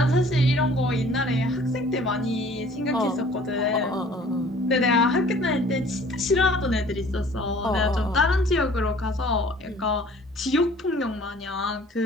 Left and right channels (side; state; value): both; normal; correlation 0.52